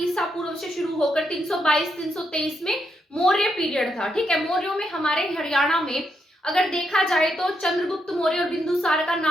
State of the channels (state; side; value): normal; both; correlation 0.80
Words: पूर्व से शुरू होकर 322-323 में मौर्य पीरियड था। ठीक है, मौर्यों में हमारे हरियाणा में अगर देखा जाए तो चंद्रगुप्त मौर्य और बिंदुसार का